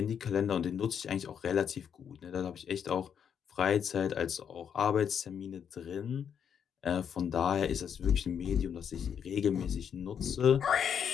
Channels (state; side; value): quieter; right; 8.0 dB